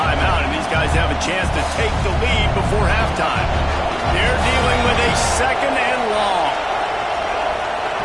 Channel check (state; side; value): identical; both; correlation 1.00